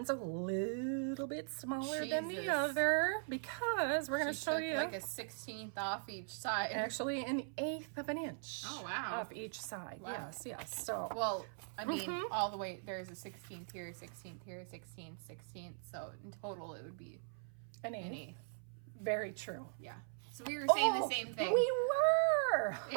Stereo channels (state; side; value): silent; left; 51 dB below the other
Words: a little bit smaller than the other because we're going to show you like a 16th off each side. Actually, an 1/8 of an inch. Oh wow! Off each side. Wow. Yes. So well, I mean, all the way there's a 16th here, 16th here, 16th, 16th. So in total, it would be an 1/8. Very true. Yeah. So we were saying the same thing. We were.